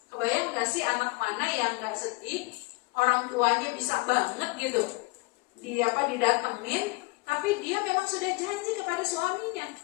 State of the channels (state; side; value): quieter; right; 25.1 dB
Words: Kebayang gak sih anak mana yang gak sedih, orang tuanya bisa banget gitu, didatengin, tapi dia memang sudah janji kepada suaminya.